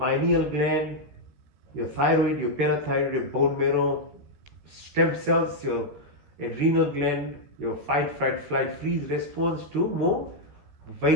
gland, your thyroid, your parathyroid, your bone marrow, stem cells, your adrenal gland, your fight, flight, freeze response to more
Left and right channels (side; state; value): left; late; 14 ms